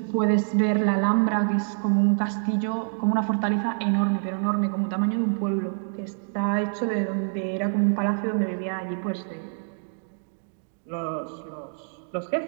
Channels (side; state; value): left; silent; digital silence